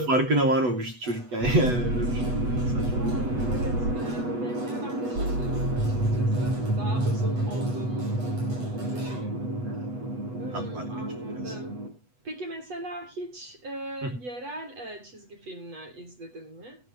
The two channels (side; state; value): left; late; 8.1 ms